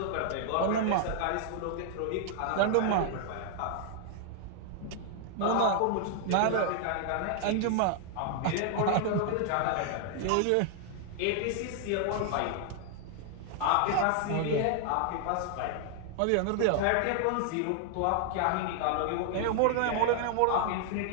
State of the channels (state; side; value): different; both; correlation 0.00